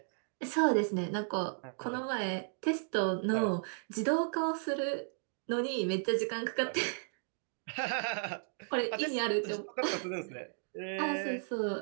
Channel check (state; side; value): silent; left; digital silence